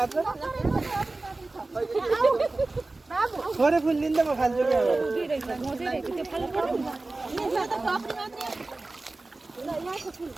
थोरै फुल दिन्छ म खान्छु कि अब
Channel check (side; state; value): left; quieter; 3.2 dB